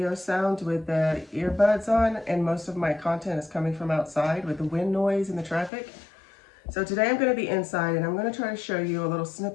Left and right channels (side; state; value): right; drops out; at 5.7 s